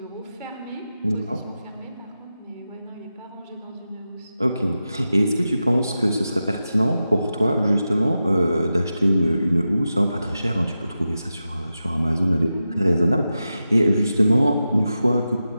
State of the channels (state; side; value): inverted; both; correlation -0.91